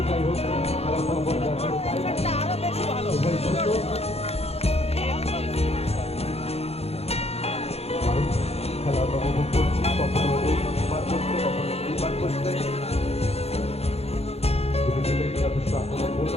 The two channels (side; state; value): right; late; 0.30 ms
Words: যাই হোক খেলার ফলাফল যা ছিল তাই। উভয় শূন্য। কারণ খেলা আমরা উপভোগ করছি, কখনো ওই পার করছে, কখনো এই পার করছে। দুটি টিমেরই যথেষ্ট আক্রমণ